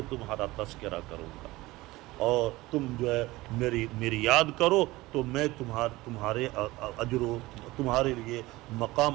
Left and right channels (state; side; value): quieter; left; 19.5 dB